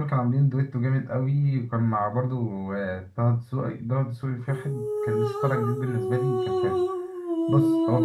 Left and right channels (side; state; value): both; identical; correlation 1.00